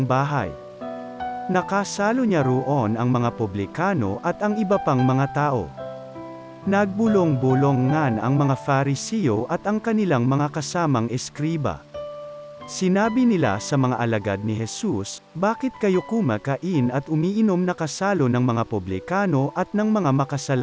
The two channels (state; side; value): identical; both; correlation 1.00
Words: bahay. Nakasalo niya roon ang mga publikano at ang iba pang mga tao. Nagbulong-bulongan ang mga Fariseo at ang kanilang mga kasamang eskriba. Sinabi nila sa mga alagad ni Jesus, "Bakit kayo kumakain at umiinom na kasalo ng mga publikano at ng mga